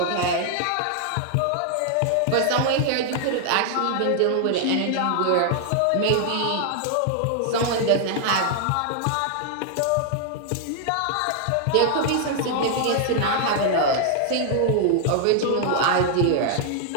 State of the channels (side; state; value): both; different; correlation 0.00